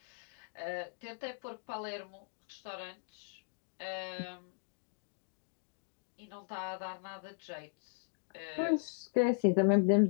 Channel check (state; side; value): silent; right; digital silence